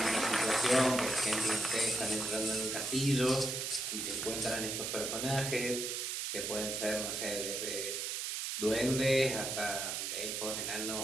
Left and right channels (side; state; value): right; noise; hiss, 2 dB below the sound